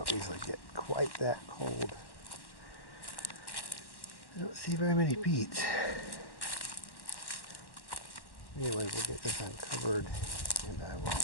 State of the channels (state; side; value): late; right; 1.1 ms